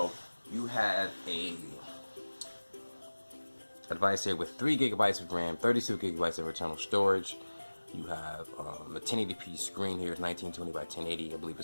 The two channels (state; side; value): inverted; both; correlation -1.00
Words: you have a device here with 3 gigabytes of RAM, 32 gigabytes of internal storage. You have a 1080p screen here, 1920 by 1080. I believe